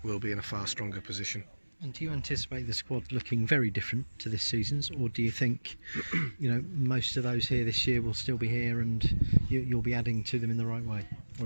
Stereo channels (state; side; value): inverted; both; correlation -1.00